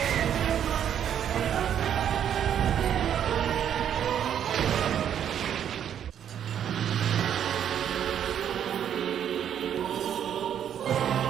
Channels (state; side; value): quieter; left; 9.4 dB